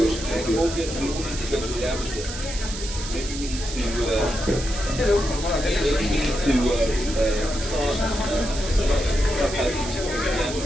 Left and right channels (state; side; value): noise; right; hiss, 9 dB below the sound